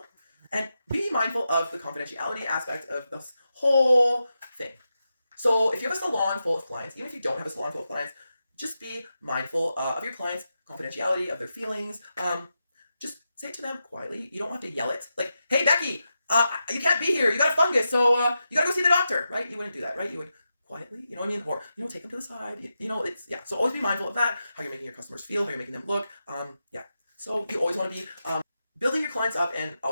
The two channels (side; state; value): both; inverted; correlation -0.88